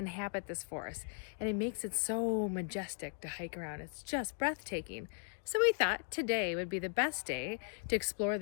this forest, and it makes it so majestic to hike around. It's just breathtaking. So we thought today would be the best day to explore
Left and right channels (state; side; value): silent; right; 53 dB below the other